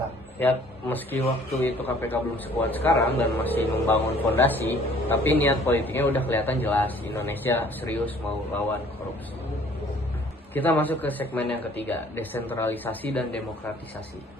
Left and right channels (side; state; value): both; normal; correlation 0.55